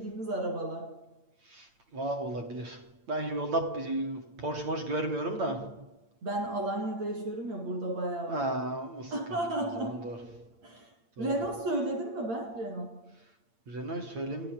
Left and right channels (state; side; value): late; left; 8.7 ms